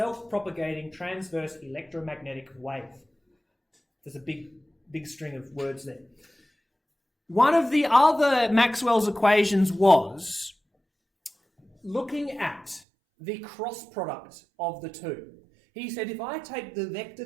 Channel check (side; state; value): left; drops out; at 12.8 s